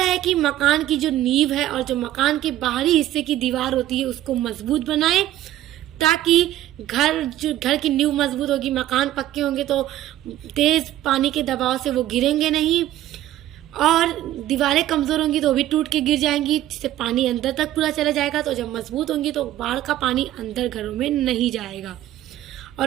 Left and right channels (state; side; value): quieter; left; 13.7 dB